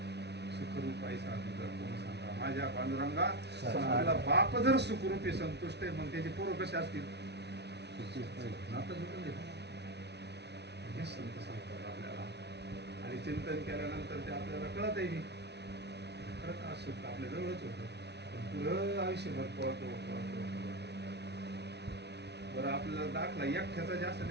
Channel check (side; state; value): left; late; 0.49 ms